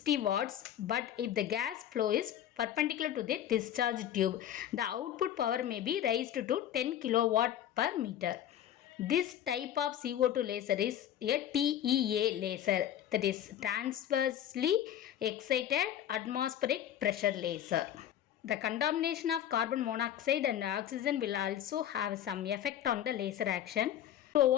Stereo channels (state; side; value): quieter; right; 10.9 dB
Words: watts, but if the gas flow is perpendicular to the discharge tube, the output power may be raised to 10 kilowatt per meter. This type of CO2 laser is a TEA laser, that is transversely excited atmospheric pressure laser. The contamination of carbon monoxide and oxygen will also have some effect on the laser action. To